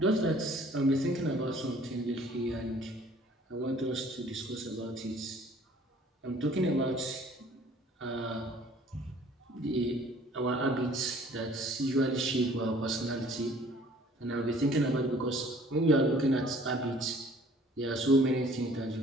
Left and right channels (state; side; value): normal; both; correlation 0.54